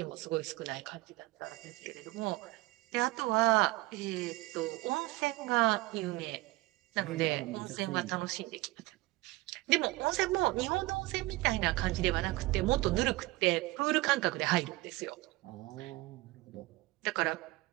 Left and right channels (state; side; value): quieter; left; 20.4 dB